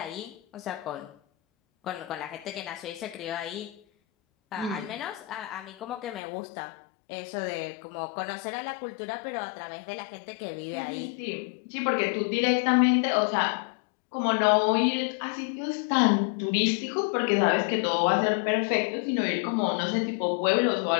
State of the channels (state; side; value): drops out; right; at 6.2 s